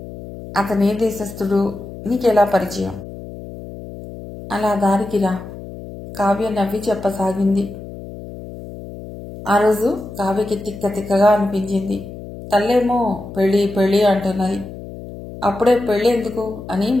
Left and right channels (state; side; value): noise; left; hum, 13 dB below the sound